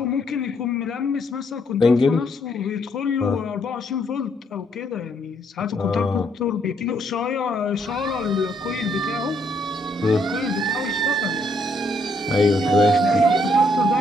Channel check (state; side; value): normal; both; correlation 0.71